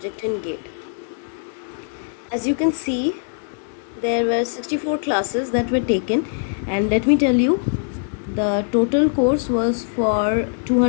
in GATE. As you can see, there were 64 classes that were taken, and let me tell you, the total course was for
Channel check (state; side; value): silent; right; digital silence